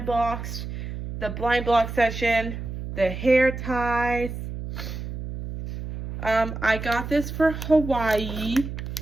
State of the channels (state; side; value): noise; right; hum, 7 dB below the sound